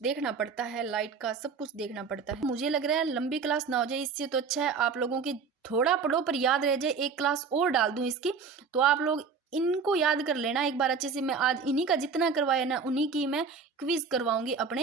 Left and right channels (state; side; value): quieter; left; 5.5 dB